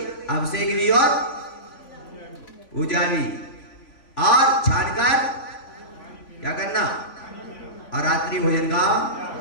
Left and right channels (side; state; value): right; late; 3.5 ms